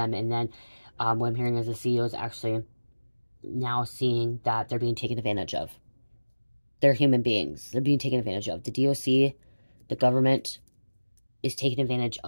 And then what I'm hearing is the CEO is actually now seeing that they're being taken advantage of. They're human beings. They're being taken advantage of. The DOC, the government, is taking advantage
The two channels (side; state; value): both; inverted; correlation -1.00